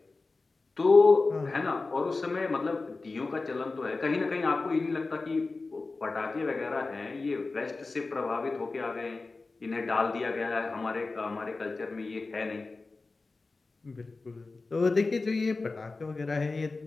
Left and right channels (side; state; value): right; quieter; 3.7 dB